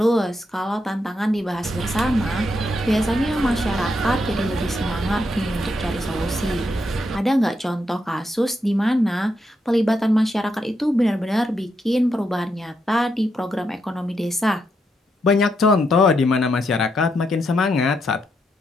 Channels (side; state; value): both; normal; correlation 0.81